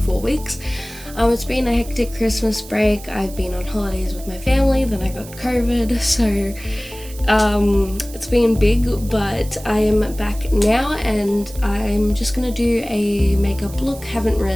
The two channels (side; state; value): right; noise; hiss, 17 dB below the sound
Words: 4 weeks. It's been a hectic Christmas break. I've been on holidays with my family, then I got COVID, so it's been big, but I am back now and I'm just gonna do a makeup look. Haven't